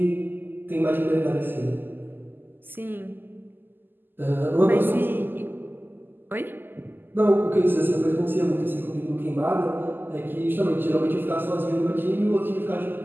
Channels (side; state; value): left; late; 0.093 ms